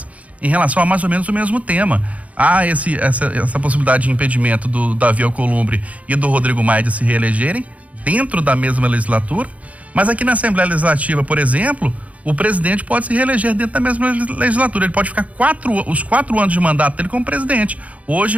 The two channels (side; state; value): left; late; 0.068 ms